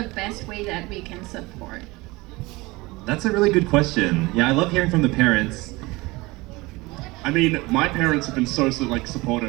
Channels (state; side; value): quieter; left; 22.2 dB